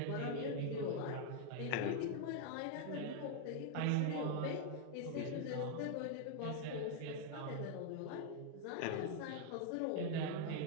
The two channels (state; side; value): different; both; correlation 0.00